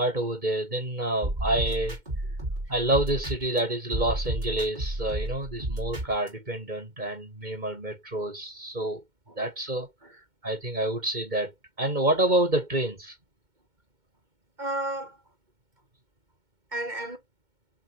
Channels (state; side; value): late; left; 2.2 ms